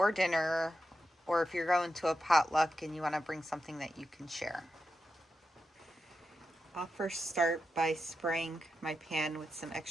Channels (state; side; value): normal; both; correlation 0.89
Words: dinner, or if you're going to a potluck and you want to bring something that you can share. I'll first start by spraying my pan with some